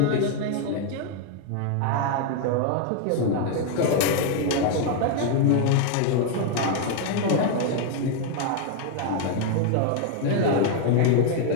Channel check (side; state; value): both; different; correlation 0.00